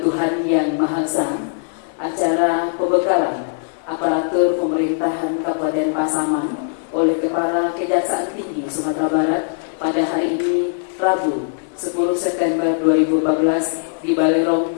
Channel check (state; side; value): silent; right; digital silence